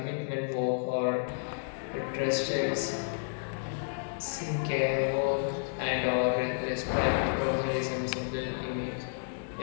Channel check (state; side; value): silent; right; digital silence